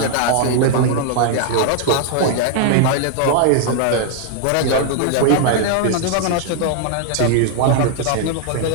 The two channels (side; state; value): both; different; correlation 0.00